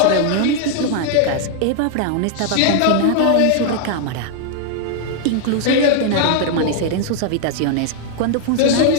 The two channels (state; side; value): different; both; correlation 0.00